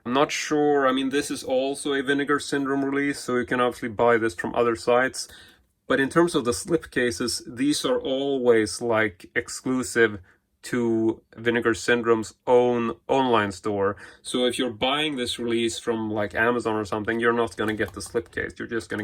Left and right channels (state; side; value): identical; both; correlation 1.00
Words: I'm not sure, I mean this is also a Vinegar Syndrome release, so you can obviously buy this from other sites. But in terms of the slipcases, these are always like exclusive to Vinegar Syndrome's own online store. So if you're buying this release from like Amazon or something, you're not going to get the slipcase. You're just